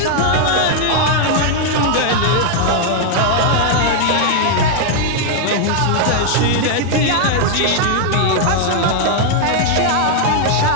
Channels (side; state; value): both; different; correlation 0.00